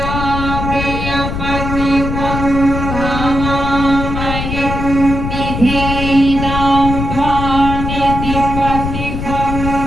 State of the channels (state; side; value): noise; left; rumble, 4 dB below the sound